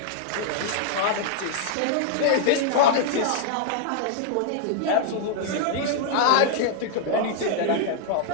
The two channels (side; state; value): both; different; correlation -0.01